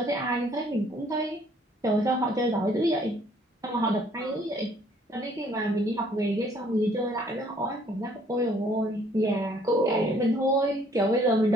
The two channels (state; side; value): normal; both; correlation 0.61